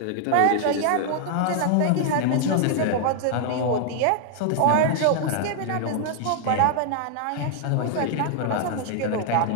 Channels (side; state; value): both; different; correlation 0.00